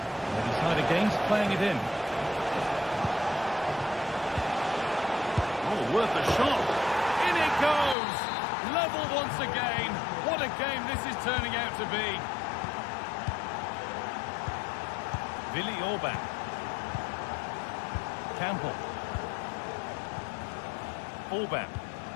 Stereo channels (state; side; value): drops out; right; at 8.0 s